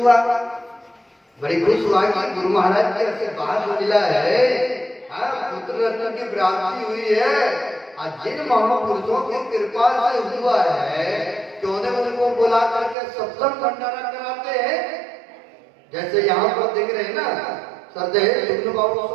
हुआ कि गुरु महाराज के आशीर्वाद मिला है, पुत्र रत्न की प्राप्ति हुई है। जिन महापुरुषों की कृपा से हुआ है, क्यों ने उनको बुला करके सत्संग भंडारा कराते हैं। जैसे यहाँ पर देख रहे हैं ना, श्रद्धेय जुगनू बाबू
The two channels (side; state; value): left; drops out; at 13.0 s